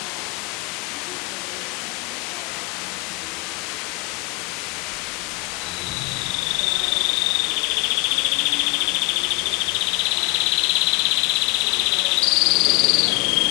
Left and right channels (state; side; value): quieter; right; 26.0 dB